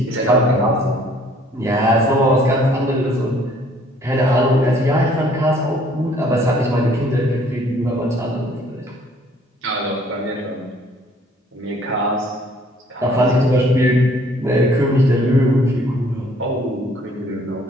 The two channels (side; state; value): both; normal; correlation 0.59